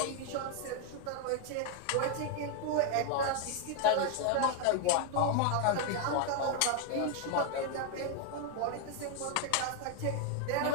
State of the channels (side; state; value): both; different; correlation 0.00